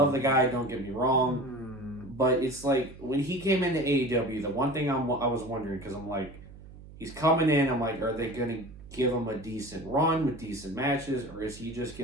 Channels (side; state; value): right; noise; hum, 18 dB below the sound